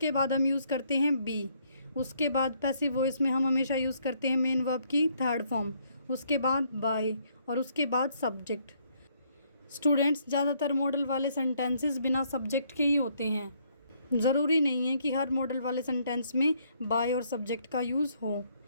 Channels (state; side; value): inverted; both; correlation -0.69